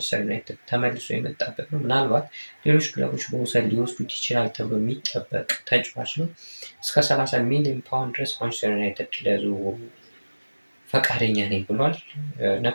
ዩናይትድ ተመልሶ የመጣበት ነው። ምናልባት ሌሎች ክለቦች በውሰት ሊወስዱት ይችላል ተብሎ የሚጠበቅ ተጫዋች ነው። እስከ 30 ሚሊዮን ፓውንድ ድረስ ማንቸስተር ዩናይትድ ለዝውውሩ ፈቃደኛ ነኝ ብሏል።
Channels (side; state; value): both; inverted; correlation -1.00